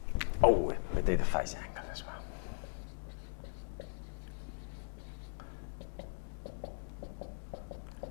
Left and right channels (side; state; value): right; silent; digital silence